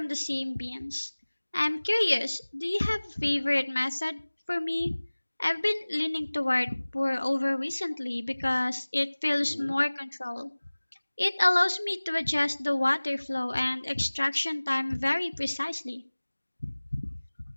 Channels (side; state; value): both; inverted; correlation -1.00